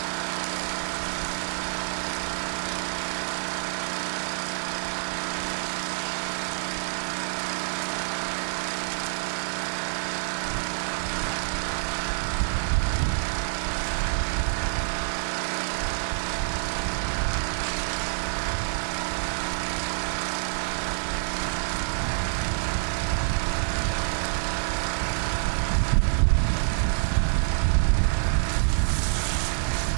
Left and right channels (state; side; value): silent; left; digital silence